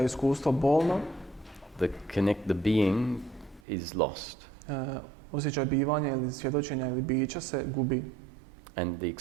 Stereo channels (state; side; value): drops out; left; at 3.6 s